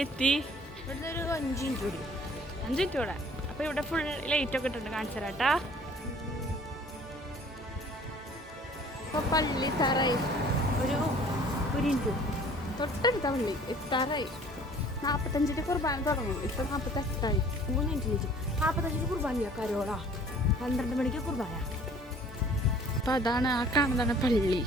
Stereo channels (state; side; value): normal; both; correlation 0.52